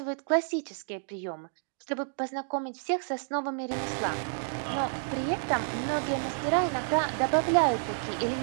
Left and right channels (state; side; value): silent; left; digital silence